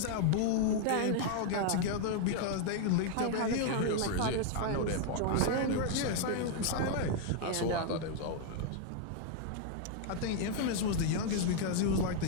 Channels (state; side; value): different; both; correlation 0.00